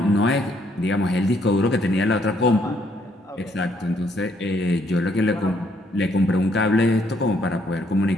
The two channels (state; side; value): normal; both; correlation 0.70